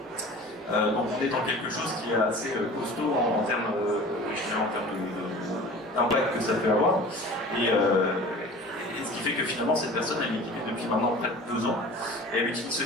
Donc on est dans quelque chose qui est assez costaud en termes d'impact que ça peut avoir. Et ce qui fait que finalement cette personne elle est équipée depuis maintenant près de 2 ans et elle utilise ce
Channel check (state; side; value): normal; both; correlation 0.41